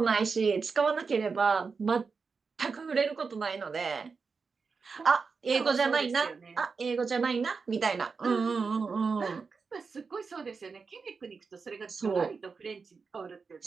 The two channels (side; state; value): left; quieter; 5.0 dB